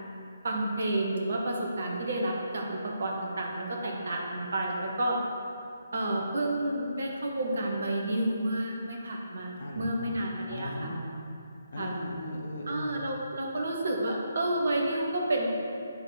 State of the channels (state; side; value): inverted; both; correlation -0.79